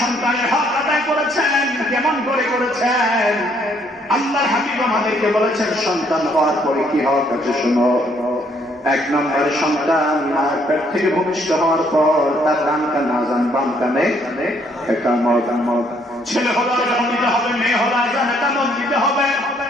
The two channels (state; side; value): normal; both; correlation 0.67